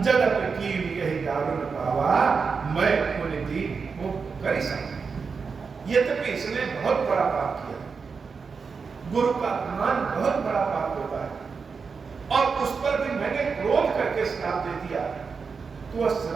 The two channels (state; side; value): quieter; left; 5.3 dB